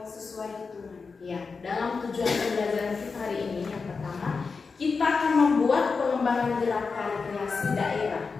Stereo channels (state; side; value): quieter; right; 4.8 dB